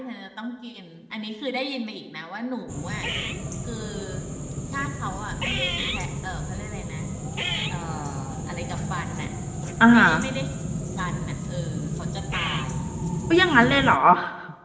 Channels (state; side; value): identical; both; correlation 1.00